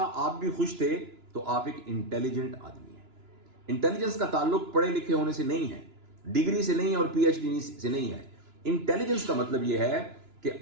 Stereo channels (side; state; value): left; late; 2.9 ms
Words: آپ بھی خوش تھے، تو آپ ایک انٹیلیجنٹ آدمی ہیں. انٹیلیجنس کا تعلق پڑھے لکھے ہونے سے نہیں ہے، ڈگری سے نہیں ہے اور پی ایچ ڈی سے نہیں ہے. انٹیلیجنس کا مطلب یہ ہے کہ